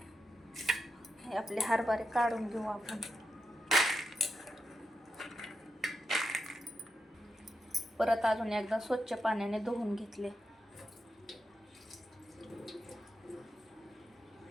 हे आपले हरभरे काढून घेऊ आपण. परत अजून एकदा स्वच्छ पाण्याने धुवून घेतले.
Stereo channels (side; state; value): both; normal; correlation 0.87